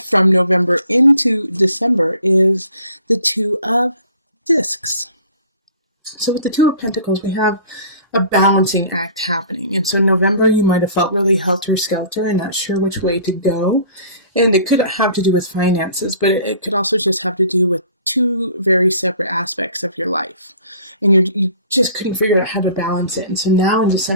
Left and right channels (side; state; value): both; inverted; correlation -0.50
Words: from November into December, is the Two of Discs. So with the Two of Pentacles, we have a balancing act happening. And so November, you might have felt really helter-skelter and not sure which way to go. And it could have to do with finances, but it could also just have to do with two very separate aspects of your life. And you just couldn't figure out how to balance it. And so now in